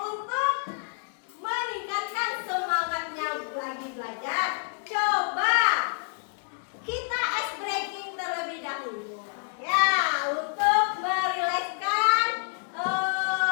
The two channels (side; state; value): right; silent; 58 dB below the other